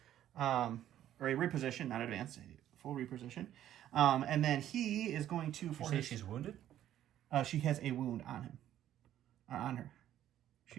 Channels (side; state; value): left; quieter; 11.8 dB